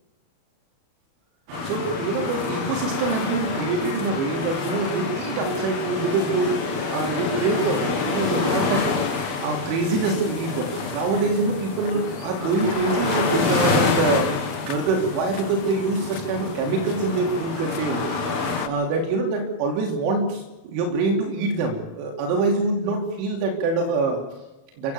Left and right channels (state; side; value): late; left; 37 ms